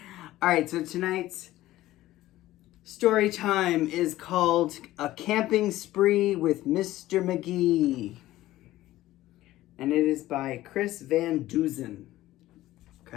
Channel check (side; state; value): right; quieter; 15.6 dB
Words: All right, so tonight's story time is called A Camping Spree with Mr. Magee. And it is by Chris Van Duzen.